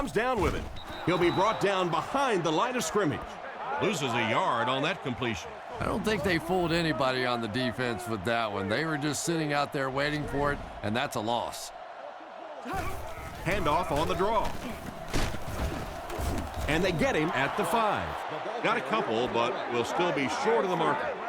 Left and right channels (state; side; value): identical; both; correlation 1.00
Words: down with it. He'll be brought down behind the line of scrimmage. Loses a yard on that completion. I don't think they fooled anybody on the defense with that one. They were just sitting out there waiting for it, and that's a loss. Handoff on the draw. And they get him at the 5. Got a couple, but will still be short of the marker.